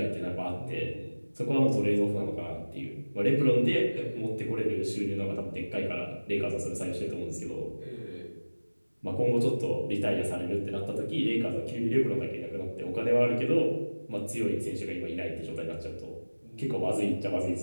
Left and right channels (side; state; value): both; inverted; correlation -1.00